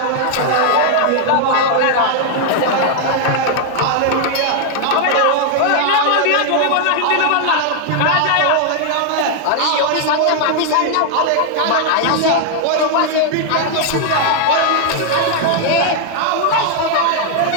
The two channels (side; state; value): both; different; correlation 0.00